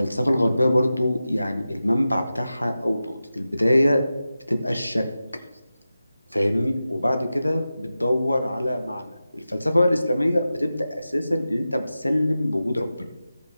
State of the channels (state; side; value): inverted; both; correlation -0.93